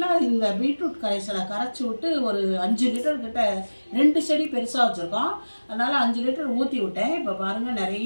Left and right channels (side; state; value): both; inverted; correlation -1.00